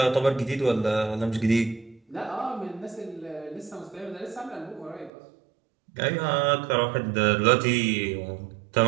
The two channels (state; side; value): drops out; left; at 5.1 s